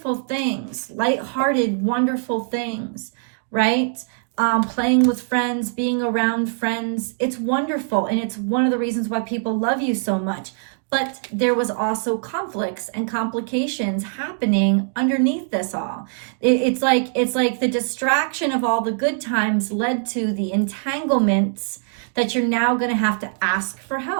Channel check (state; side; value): silent; left; digital silence